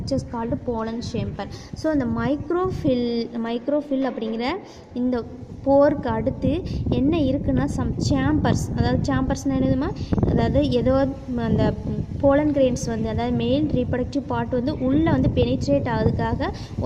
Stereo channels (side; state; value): both; identical; correlation 1.00